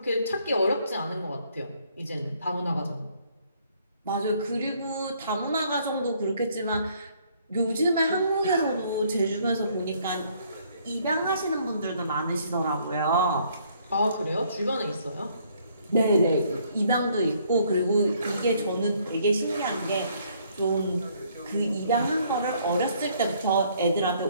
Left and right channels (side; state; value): both; inverted; correlation -0.65